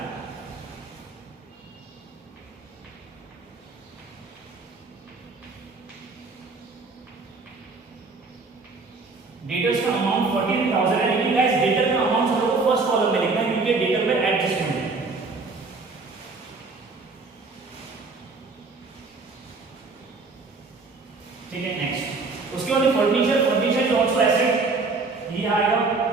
डेटर्स का अमाउंट 14,000 है, लेकिन गाइस डेटर का अमाउंट हम लोग को फर्स्ट कॉलम में लिखना है क्योंकि डेटर में एडजस्टमेंट है। ठीक है, नेक्स्ट उसके बाद furniture. Furniture is also asset, ये आएगा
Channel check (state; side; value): quieter; left; 4.0 dB